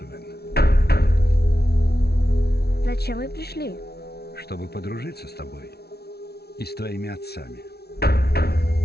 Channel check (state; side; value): late; right; 0.46 ms